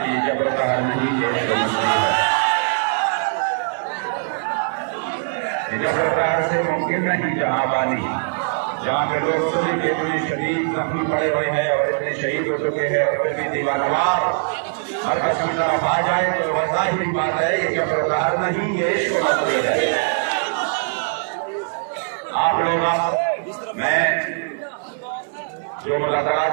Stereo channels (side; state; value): left; silent; digital silence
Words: कि जब नहीं है जबर से मुमकिन नहीं जहाँ बानी, जहाँ पे लोग सभी के इतने शदीद जख्मी पड़े हुए हैं और इतने शहीद हो चुके हैं और फिर भी दीवानवार हर कसम तरफ आ जाए तो वैसा ही बात है। ये जबर नहीं, ये इश्क नजरी है। आप लोग मैं जो मुलाकात